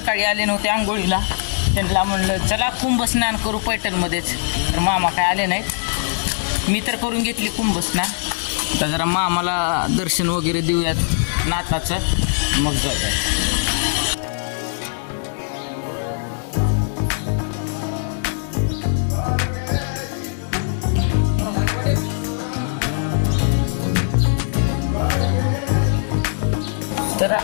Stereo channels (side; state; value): right; silent; digital silence